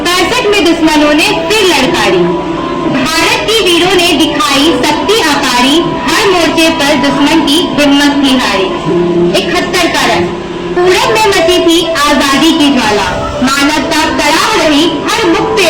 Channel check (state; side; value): identical; both; correlation 1.00